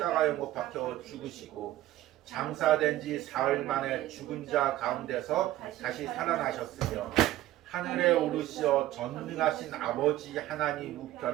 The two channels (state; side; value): quieter; left; 14.8 dB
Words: 못 박혀 죽으시고 장사된 지 사흘 만에 죽은 자 가운데서 다시 살아나셨으며 하늘에 오르시어 전능하신 아버지 하나님